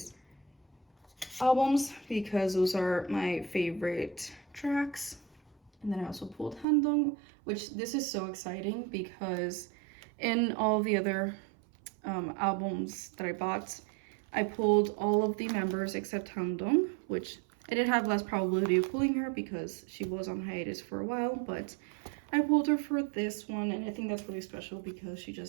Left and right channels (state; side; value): drops out; left; at 6.7 s